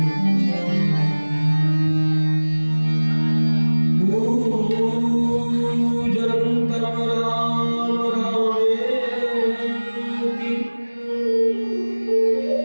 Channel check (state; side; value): inverted; both; correlation -1.00